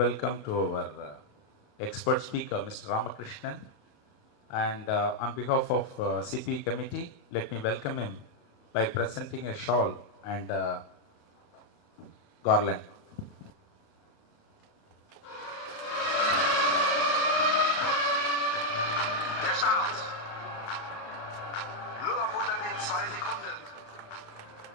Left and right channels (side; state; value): right; late; 28 ms